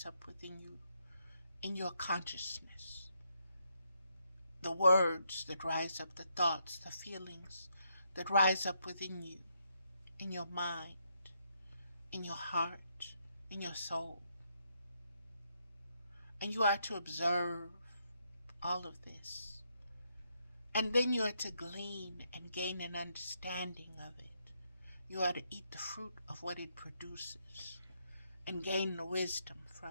up within you in your consciousness. The words that rise up, the thoughts, the feelings that rise up within you, in your mind, in your heart, in your soul. And you are to observe all of this. And then you are to glean and gain an understanding of it. You are to eat the fruit of what it produces and gain the wisdom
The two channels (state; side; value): inverted; both; correlation -0.78